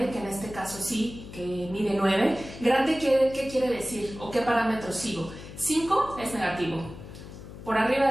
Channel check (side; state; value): left; noise; hum, 14 dB below the sound